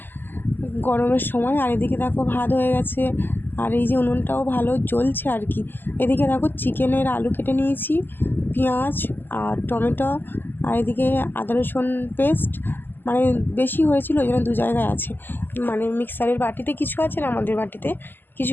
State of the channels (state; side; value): late; right; 0.093 ms